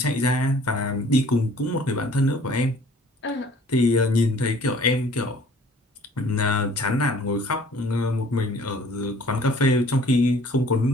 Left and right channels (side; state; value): both; normal; correlation 0.53